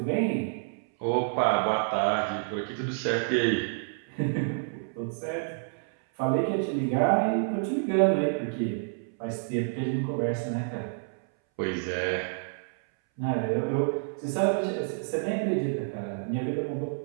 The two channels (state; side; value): silent; left; 59 dB below the other